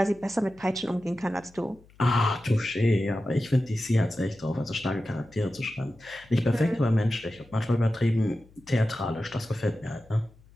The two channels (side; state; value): left; noise; hum, 27 dB below the sound